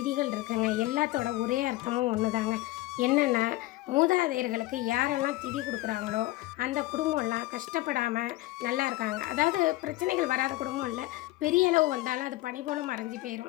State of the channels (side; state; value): right; quieter; 18.5 dB